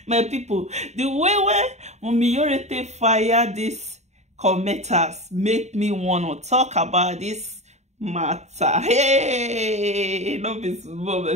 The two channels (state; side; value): late; left; 0.33 ms